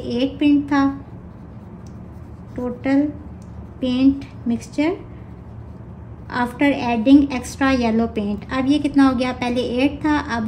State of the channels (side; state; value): both; identical; correlation 1.00